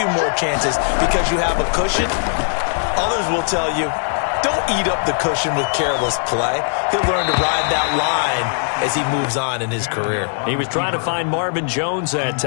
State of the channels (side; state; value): right; silent; digital silence